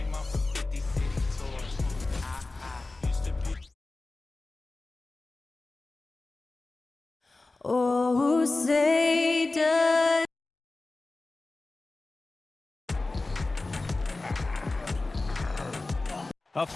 off of 50 city tours. Used to be. Oh, say does. A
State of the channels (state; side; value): quieter; right; 3.2 dB